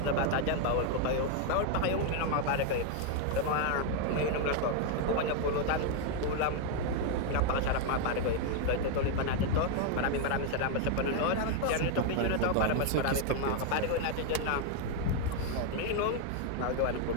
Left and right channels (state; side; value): different; both; correlation 0.00